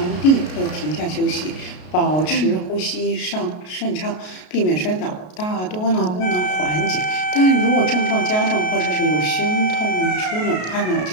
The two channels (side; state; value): right; late; 33 ms